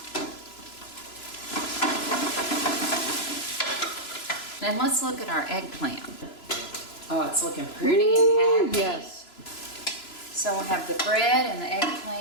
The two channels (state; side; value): late; right; 3.0 ms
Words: Then let's look at our eggplant. Oh, it's looking pretty and happy. Yes. So we'll have the bread and the